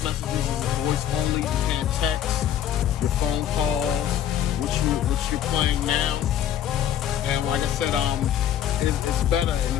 messages is voice only. You can't text. Your phone calls, which you're playing now, and like I said, it's better, and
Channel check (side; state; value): right; quieter; 10.4 dB